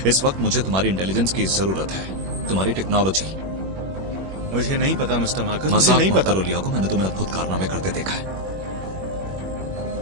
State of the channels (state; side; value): late; left; 21 ms